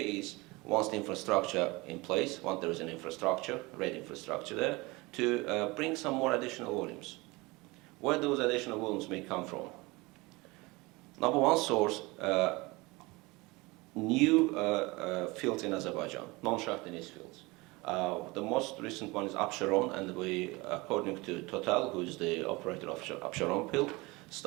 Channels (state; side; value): quieter; left; 23.6 dB